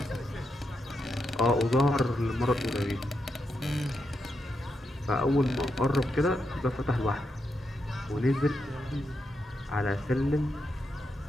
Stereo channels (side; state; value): both; normal; correlation 0.84